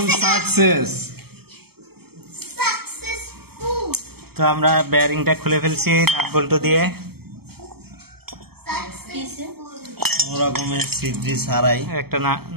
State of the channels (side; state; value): left; late; 0.96 ms